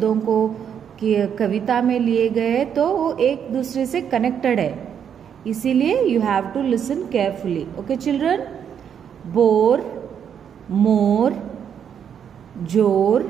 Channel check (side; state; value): left; quieter; 8.2 dB